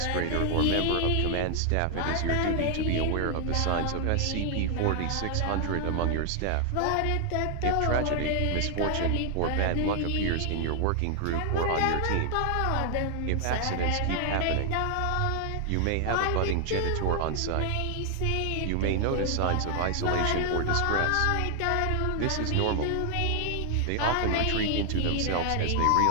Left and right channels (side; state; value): both; different; correlation 0.00